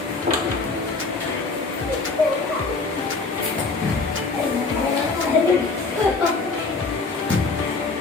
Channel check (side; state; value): right; quieter; 3.9 dB